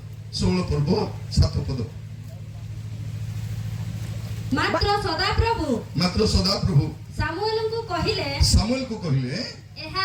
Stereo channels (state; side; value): identical; both; correlation 1.00